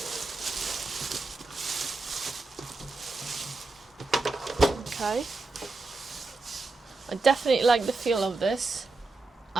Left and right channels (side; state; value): left; quieter; 3.5 dB